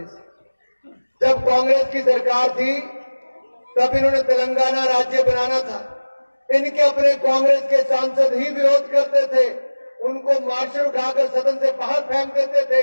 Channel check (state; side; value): inverted; both; correlation -1.00